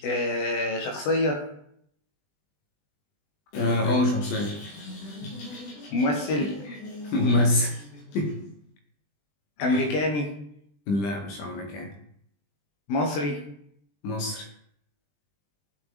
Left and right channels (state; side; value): late; right; 20 ms